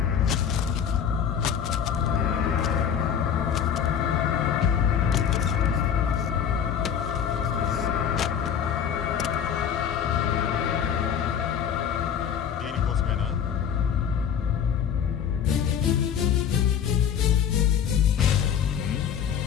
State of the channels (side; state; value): right; quieter; 8.2 dB